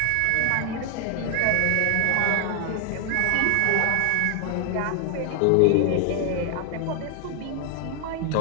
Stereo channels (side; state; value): both; different; correlation 0.00